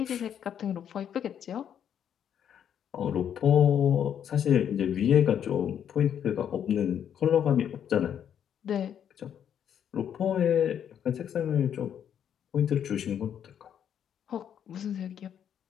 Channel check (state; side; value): quieter; right; 9.0 dB